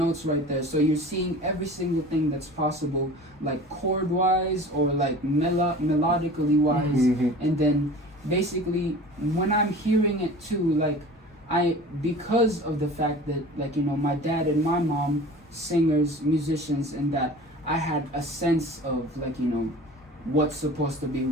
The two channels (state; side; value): normal; both; correlation 0.40